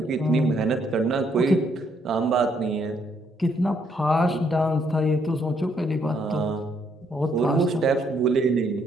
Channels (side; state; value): both; normal; correlation 0.72